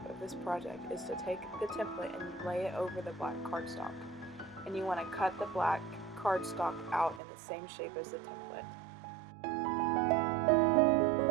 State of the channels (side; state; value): left; drops out; at 7.2 s